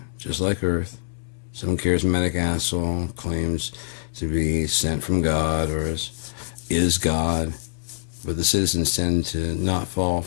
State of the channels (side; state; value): right; silent; digital silence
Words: just like Earth. Some charismatic asshole claims to be sent from God or is God, but the citizens tend to not fall